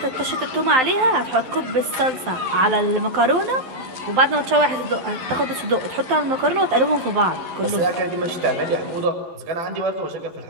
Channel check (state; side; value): late; left; 12 ms